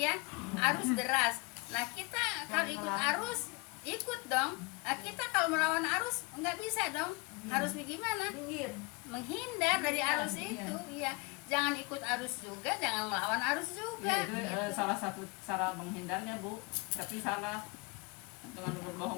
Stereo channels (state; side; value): quieter; right; 29.5 dB